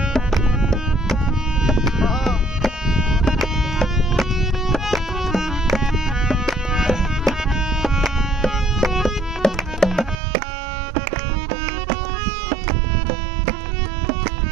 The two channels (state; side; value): drops out; left; at 10.2 s